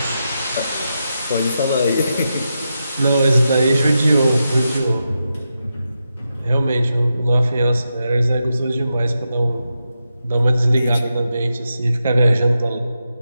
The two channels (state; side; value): inverted; both; correlation -0.87